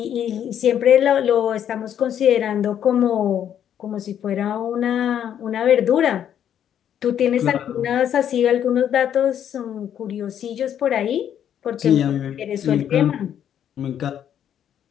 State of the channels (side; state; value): right; quieter; 9.7 dB